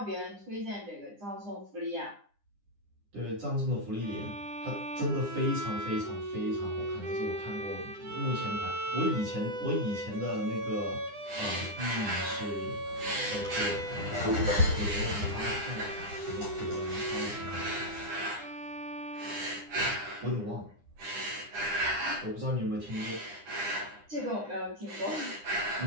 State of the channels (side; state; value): left; late; 9.9 ms